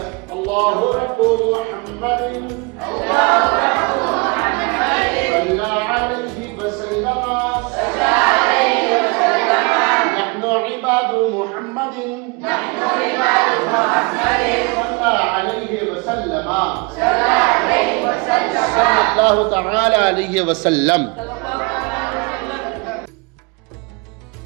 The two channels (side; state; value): left; quieter; 29.1 dB